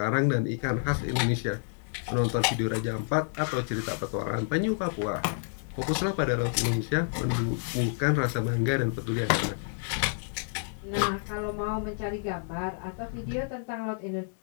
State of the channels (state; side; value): silent; right; digital silence